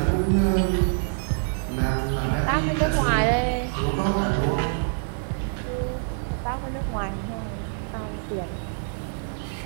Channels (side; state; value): left; silent; 61 dB below the other